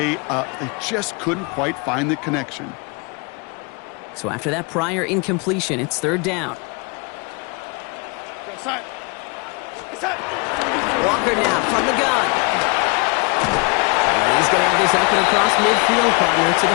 up. They just couldn't quite find the connection. So after that prior incompletion, it's 3rd down. Walker now from the gun. And he's going to have this up and across midfield, partner, to the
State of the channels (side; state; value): right; quieter; 30.4 dB